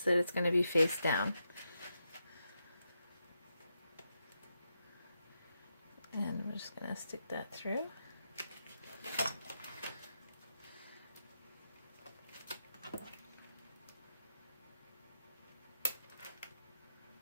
that it's going to be face down. And we're just going to stick that through.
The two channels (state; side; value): inverted; both; correlation -0.84